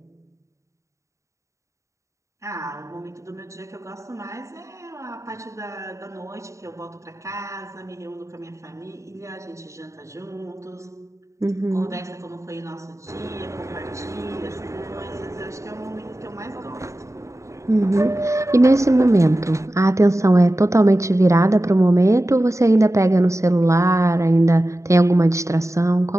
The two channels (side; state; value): left; late; 0.15 ms